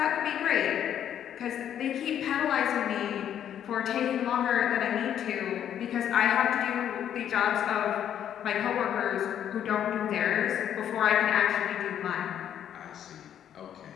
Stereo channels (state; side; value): quieter; right; 9.9 dB